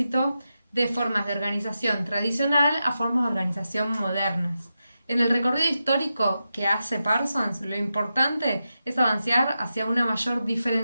de formas de organización tradicional a formas de organización modernas. En el recorrido histórico que hace Parsons, lo importante es avanzar hacia una mayor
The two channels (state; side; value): inverted; both; correlation -0.89